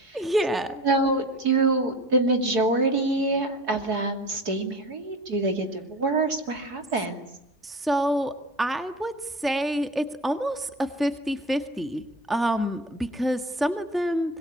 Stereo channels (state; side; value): normal; both; correlation 0.35